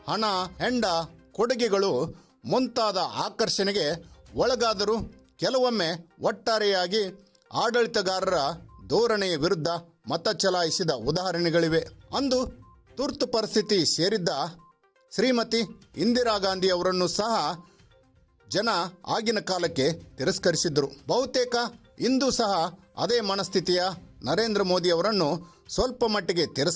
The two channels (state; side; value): identical; both; correlation 1.00